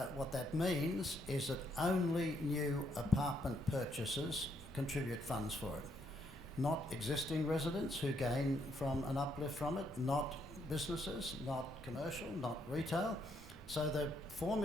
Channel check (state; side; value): normal; both; correlation 0.74